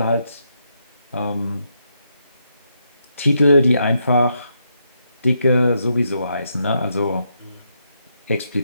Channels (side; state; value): both; inverted; correlation -0.80